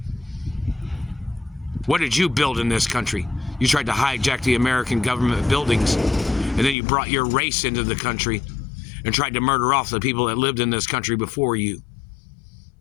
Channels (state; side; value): drops out; right; at 6.8 s